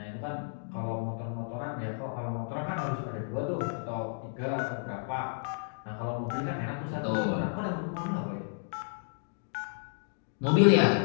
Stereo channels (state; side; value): silent; right; digital silence